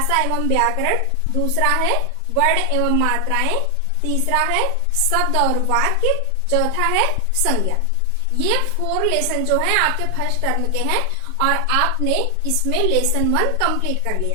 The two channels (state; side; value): different; both; correlation 0.00